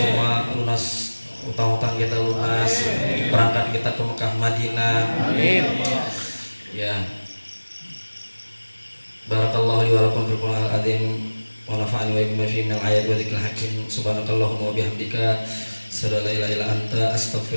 lunas utang-utang kita lunas, berangkat kita ke Mekah Madinah. Ya. Barakallahu li wa lakum fil Qur'anil azim wa nafa'ani wa iyyakum fi minal ayati wa dzikril hakim. Subhanakallahumma wa bihamdika asyhadu an la ilaha illa anta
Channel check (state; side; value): inverted; both; correlation -1.00